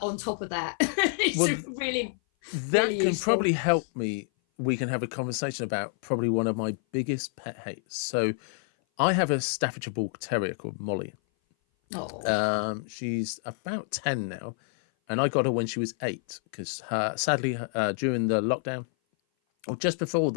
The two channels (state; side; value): silent; right; 57 dB below the other